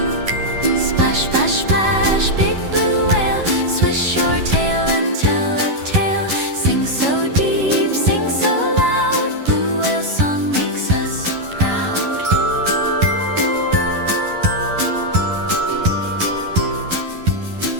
Splash, splash, splash, big blue whale, swish your tail and tell a tale. Sing so deep, sing so loud, blue whale song makes us proud.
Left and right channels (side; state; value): left; late; 11 ms